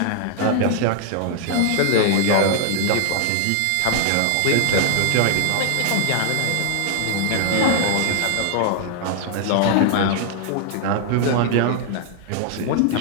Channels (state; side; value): different; both; correlation 0.00